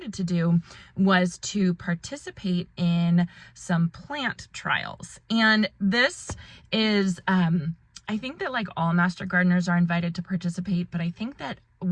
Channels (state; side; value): identical; both; correlation 1.00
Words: to do was to participate in some plant trials. And this is I think that like all master gardeners are invited to participate, but I think that